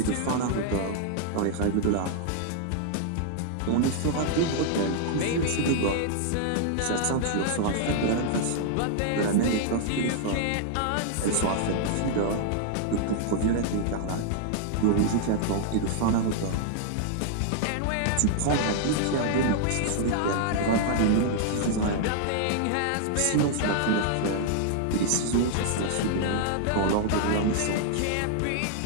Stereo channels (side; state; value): both; different; correlation 0.00